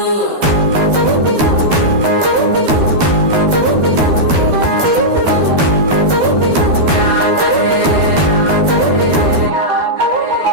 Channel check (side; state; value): left; late; 13 ms